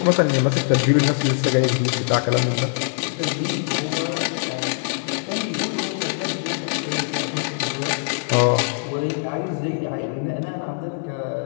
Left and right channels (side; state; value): right; silent; digital silence